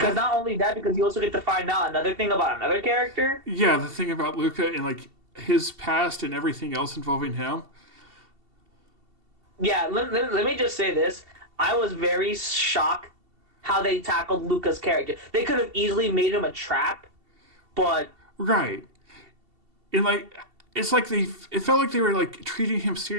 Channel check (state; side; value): late; left; 2.7 ms